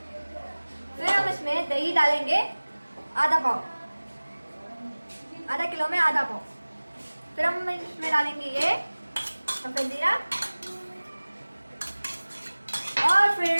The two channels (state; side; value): inverted; both; correlation -1.00